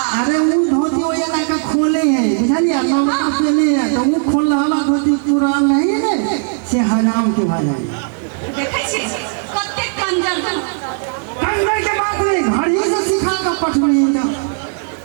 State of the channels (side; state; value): left; silent; 61 dB below the other